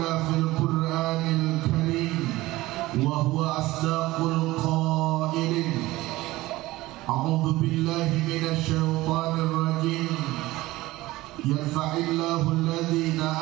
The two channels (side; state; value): left; quieter; 18.4 dB